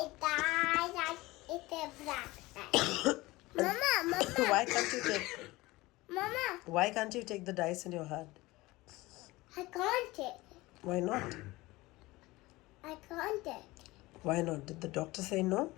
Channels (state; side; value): quieter; right; 20.3 dB